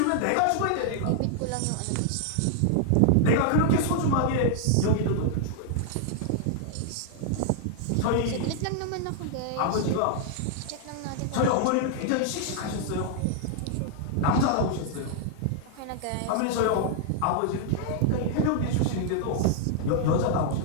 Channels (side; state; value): both; different; correlation -0.01